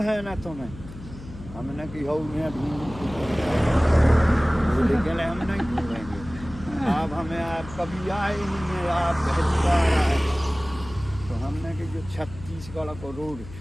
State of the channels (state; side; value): noise; left; hum, 15 dB below the sound